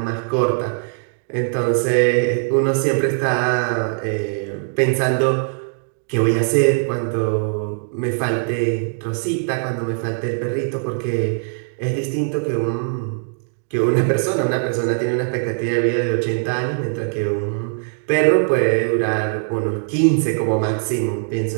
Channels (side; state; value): left; silent; digital silence